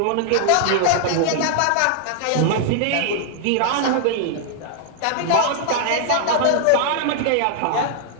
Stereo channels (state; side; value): different; both; correlation 0.00